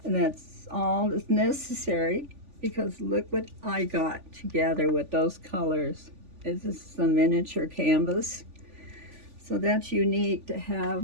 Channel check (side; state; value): left; late; 3.5 ms